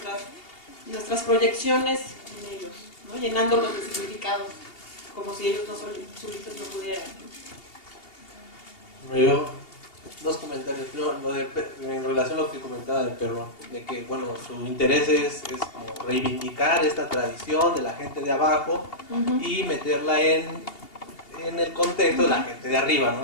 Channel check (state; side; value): late; right; 2.8 ms